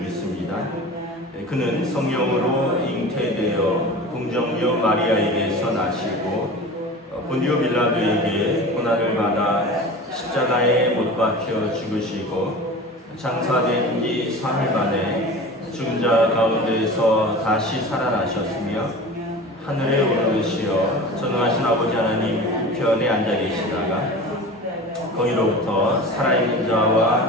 믿습니다. 그는 성령으로 잉태되어 동정녀 마리아에게서 나시고 본디오 빌라도에게 고난을 받아 십자가에 못 박혀 죽으시고 장사된 지 사흘 만에 죽은 자 가운데서 다시 살아나셨으며 하늘에 오르시어 전능하신 아버지 하나님 우편에 앉아 계시다가 거기로부터 살아있는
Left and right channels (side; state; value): both; normal; correlation 0.35